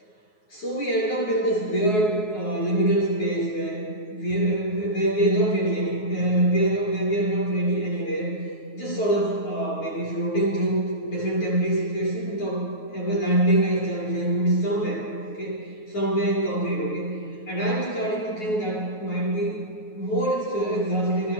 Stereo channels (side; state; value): right; late; 9.4 ms